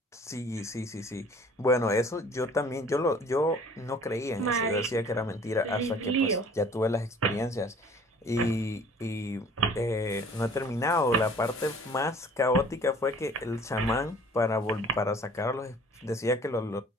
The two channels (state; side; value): normal; both; correlation 0.51